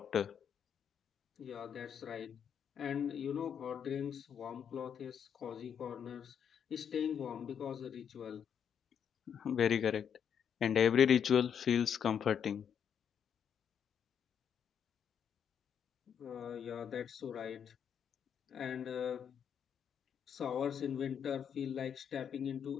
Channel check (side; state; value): right; quieter; 8.0 dB